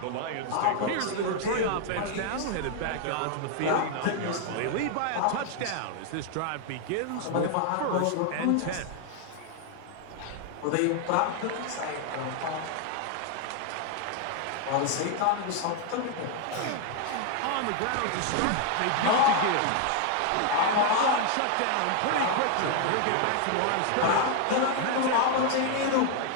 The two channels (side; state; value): both; different; correlation 0.01